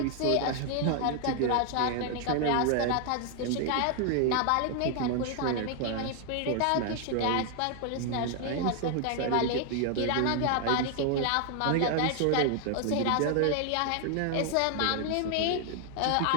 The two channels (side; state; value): both; different; correlation 0.00